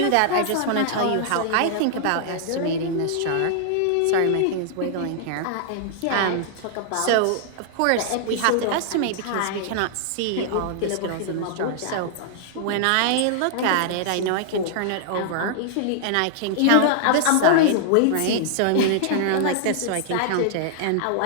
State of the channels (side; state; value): both; different; correlation -0.01